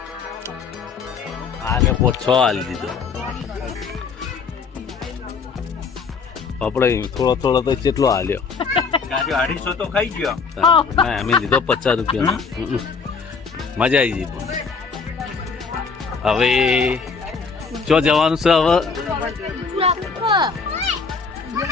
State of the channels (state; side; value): quieter; right; 5.2 dB